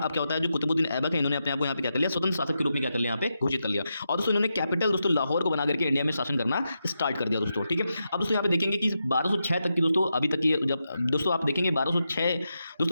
क्या होता है, जो कुतुबुद्दीन ऐबक है इन्होंने अपने आप को यहाँ पे क्या कर लिया, स्वतंत्र शासक के रूप में क्या कर लिया, यहाँ पे घोषित कर लिया। और दोस्तों इन्होंने कैपिटल दोस्तों लाहौर को बना करके इंडिया में शासन करना स्टार्ट कर दिया दोस्तों। ठीक है, अब दोस्तों यहाँ पे देखेंगे कि 1206 तक की दोस्तों अभी तक की, जब दोस्तों आप देखेंगे 1206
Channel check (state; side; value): inverted; both; correlation -0.86